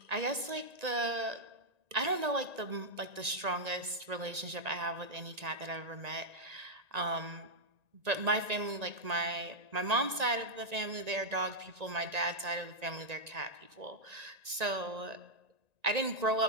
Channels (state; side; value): late; left; 1.9 ms